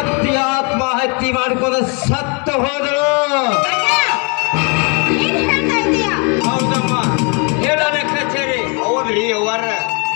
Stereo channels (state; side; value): quieter; right; 34.2 dB